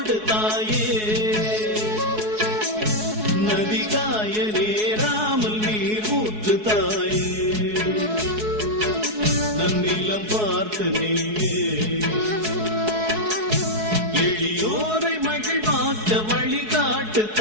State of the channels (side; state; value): left; late; 4.7 ms